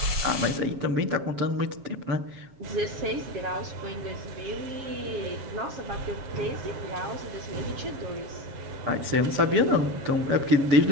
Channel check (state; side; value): late; left; 7.3 ms